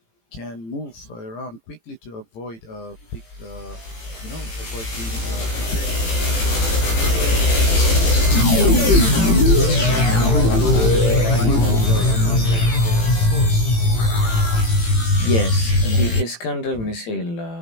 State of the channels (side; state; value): right; late; 18 ms